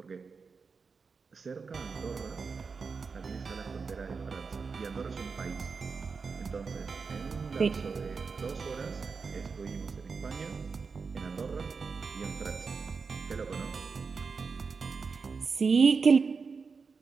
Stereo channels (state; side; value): quieter; left; 5.0 dB